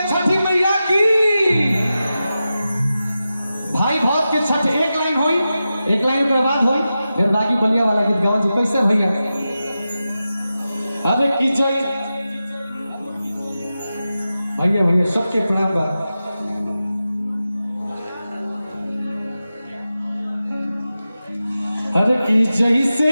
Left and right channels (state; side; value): inverted; both; correlation -0.92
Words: छठी मैया की। भाई भौज के छठ एक लाइन हुई, एक लाइन के बाद हुई, फिर बाकी बलिया वाला गीत गाओ जो कैसे भैया। अरे की जय भैया भैया सबके प्रणाम बा। अरे की जैसे